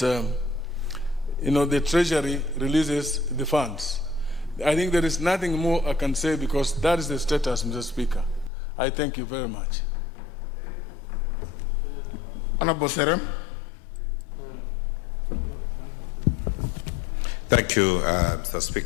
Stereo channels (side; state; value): right; drops out; at 8.5 s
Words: Treasury releases the funds. I think there is nothing more I can say because that is the status, Mr. Speaker. I thank you very much. Honorable Serem. Thank you, Mr.